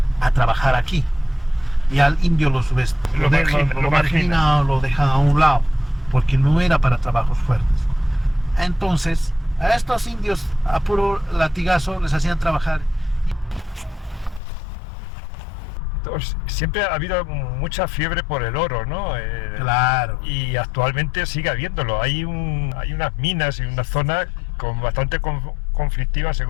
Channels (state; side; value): drops out; right; at 14.4 s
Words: a trabajar aquí. Y al indio lo marginan o lo dejan a un lado, porque no era para trabajos fuertes. Entonces, a estos indios a puro latigazo les hacían trabajar. Siempre ha habido mucha fiebre por el oro, ¿no? Claro. Y actualmente sigue habiéndolo. Hay unas minas y una zona bastante conflictiva,